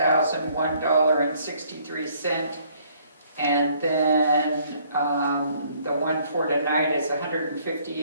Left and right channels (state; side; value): inverted; both; correlation -0.63